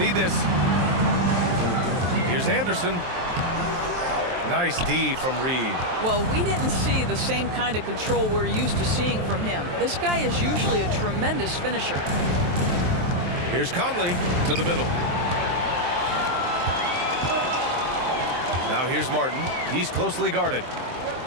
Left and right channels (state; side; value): late; left; 23 ms